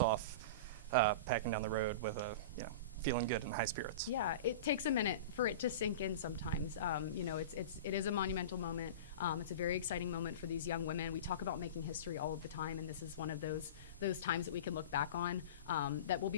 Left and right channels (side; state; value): both; inverted; correlation -0.30